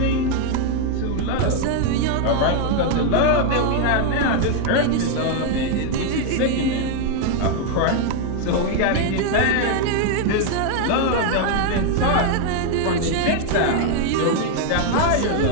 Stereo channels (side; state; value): both; different; correlation 0.00